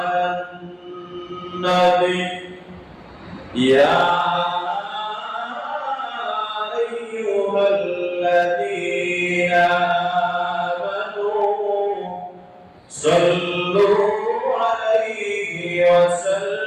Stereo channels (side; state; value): both; identical; correlation 1.00